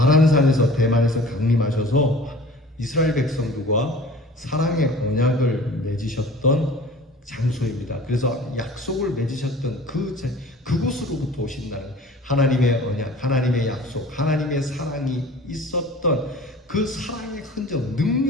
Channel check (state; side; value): normal; both; correlation 0.44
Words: 대만에서 강림하셔서 이스라엘 백성들과 사랑의 언약을 맺으셨던 장소입니다. 그래서 약속을 맺으셨던 그곳으로부터 오신다는 하나님의 언약, 하나님의 약속, 하나님의 사랑이 있었던 그 사랑의 흔적,